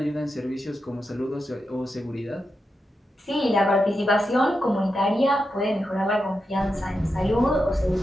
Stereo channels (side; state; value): both; normal; correlation 0.88